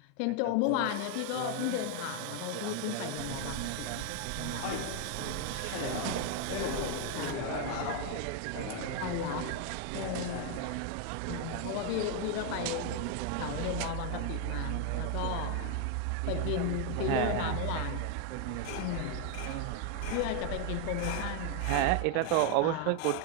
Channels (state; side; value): different; both; correlation 0.01